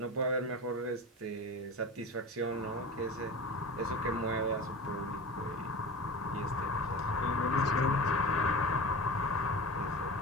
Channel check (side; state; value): both; normal; correlation 0.31